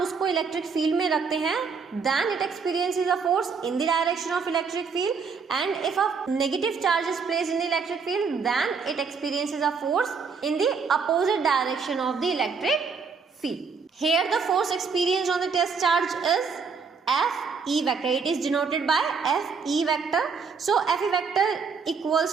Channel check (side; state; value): left; quieter; 5.4 dB